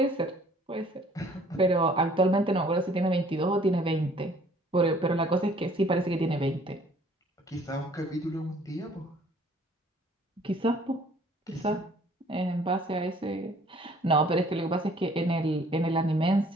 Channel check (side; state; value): both; normal; correlation 0.57